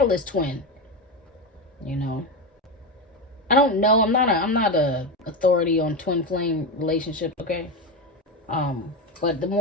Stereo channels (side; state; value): both; normal; correlation 0.16